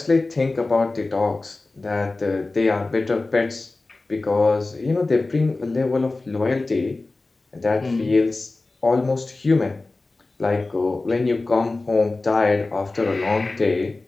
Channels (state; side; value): quieter; right; 3.3 dB